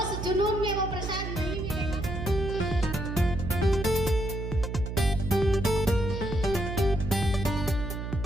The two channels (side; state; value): right; noise; hum, 5 dB below the sound